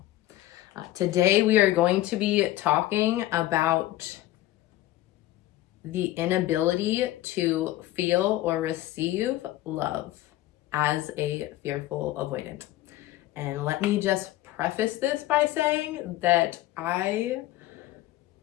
Today we are going to be talking about the inability to feel or receive love as a fearful avoidant. And let me just preface this by saying that I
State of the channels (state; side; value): quieter; right; 15.6 dB